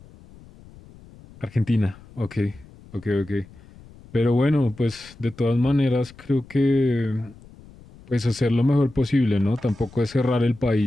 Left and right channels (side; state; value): left; noise; rumble, 22 dB below the sound